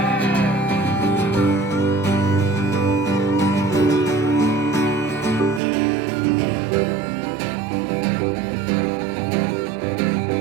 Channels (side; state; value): left; drops out; at 5.6 s